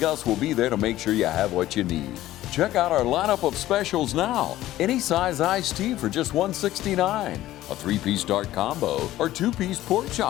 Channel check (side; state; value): right; quieter; 14.8 dB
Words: will be there to make sure you have what you need. Check out our lineup of specials now. Any size iced tea for just $1.69, a 3-piece dark combo or 2-piece pork